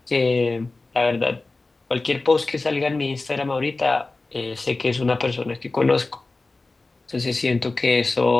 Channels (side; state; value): right; quieter; 3.4 dB